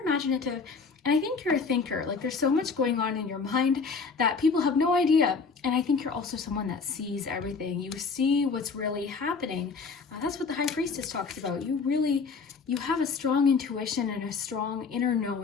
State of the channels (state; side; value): quieter; right; 4.9 dB